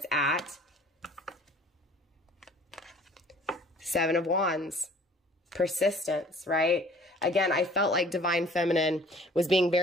at. 7 of Wands. Persistence, right? Again, I felt like divine feminine was being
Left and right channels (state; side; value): normal; both; correlation 0.51